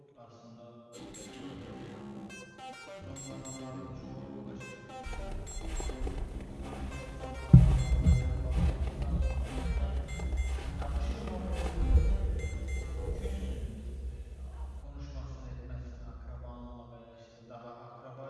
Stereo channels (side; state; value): both; identical; correlation 1.00